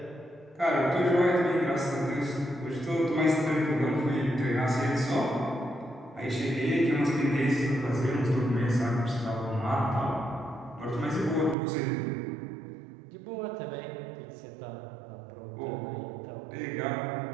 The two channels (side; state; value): left; drops out; at 11.6 s